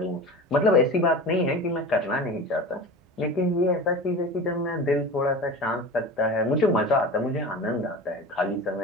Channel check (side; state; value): both; normal; correlation 0.32